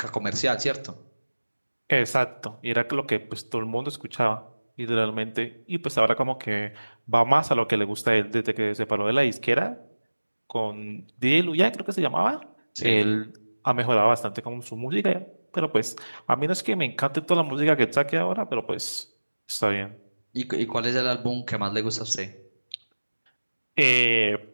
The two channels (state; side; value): inverted; both; correlation -1.00